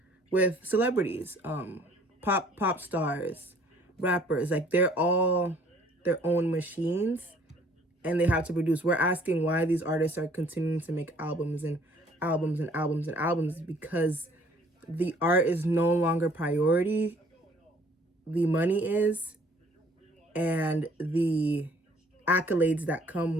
with celebrities, pop stars, rappers. Like, they're all their own machines and they have to produce. We're asking why these artists are continuing to make albums and albums and albums and albums, because the art is no longer priority. The money is, and the accolades that come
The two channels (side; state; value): both; normal; correlation 0.58